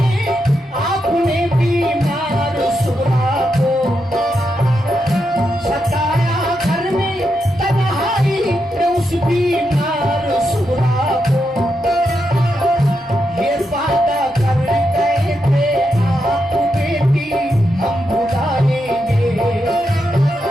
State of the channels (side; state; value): both; normal; correlation 0.84